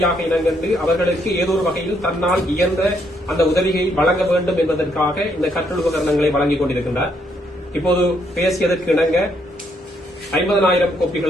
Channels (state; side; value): normal; both; correlation 0.73